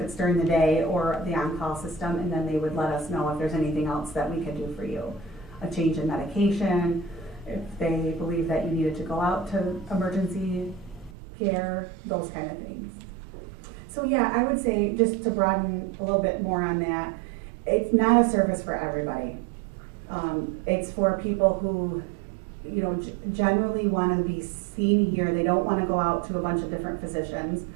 it's during the day or the on-call system, and then they would let us know if there's anything else that we could do for you. A change in medication, if they believe that you needed to go out to emergency care, those kind of things. So yeah, I would say, just to broaden a little bit more on that, it's not a service for everybody. It's for people who, you know, generally want to be seen here. They don't want to go out to a bunch of different physicians.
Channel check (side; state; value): left; drops out; at 11.2 s